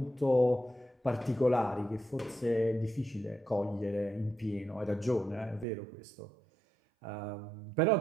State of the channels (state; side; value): drops out; left; at 5.7 s